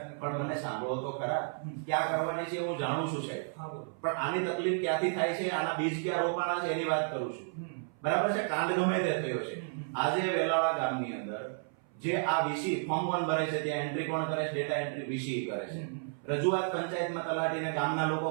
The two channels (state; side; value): silent; left; 56 dB below the other